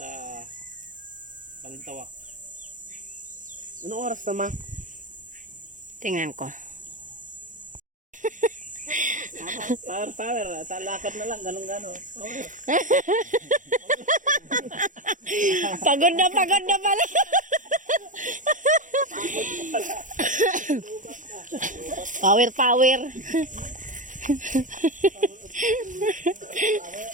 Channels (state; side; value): late; left; 0.37 ms